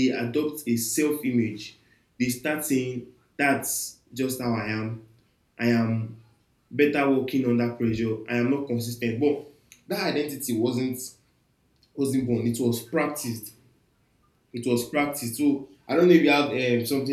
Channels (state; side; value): identical; both; correlation 1.00